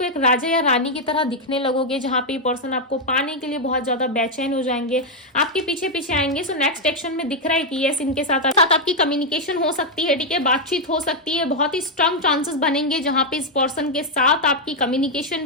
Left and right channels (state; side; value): normal; both; correlation 0.00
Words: एक राजा या रानी की तरह दिखने लगोगे, जहां पे पर्सन आपको पाने के लिए बहुत ज्यादा बेचैन हो जाएंगे, आपके पीछे पीछे आएंगे। सो नेक्स्ट एक्शन में दिख रहा है कि यस, इनके साथ आपकी कम्युनिकेशन हो सकती है, ठीक है, बातचीत हो सकती है, बहुत ही स्ट्रांग चांसेस बनेंगे जहां पे इस पर्सन के साथ आपकी कम्युनिकेशन